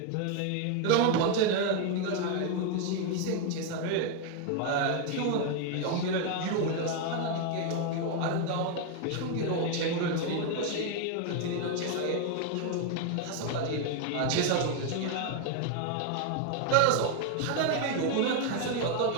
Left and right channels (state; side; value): different; both; correlation 0.01